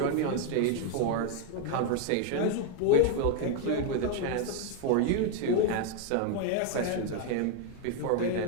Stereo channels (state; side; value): different; both; correlation 0.01